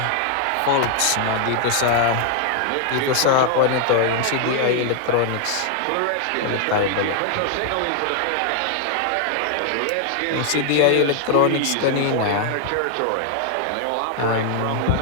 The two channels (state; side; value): different; both; correlation 0.00